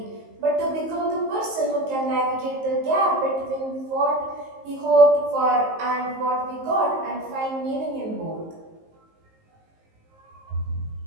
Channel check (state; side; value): late; left; 19 ms